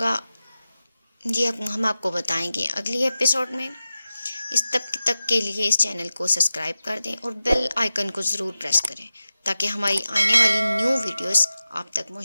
یہ ہم آپ کو بتائیں گے اگلی ایپیسوڈ میں۔ اس تک کے لیے اس چینل کو سبسکرائب کر دیں اور بیل آئیکن کو ضرور پریس کریں تاکہ ہماری آنے والی نیو ویڈیوز آپ تک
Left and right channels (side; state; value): both; inverted; correlation -0.94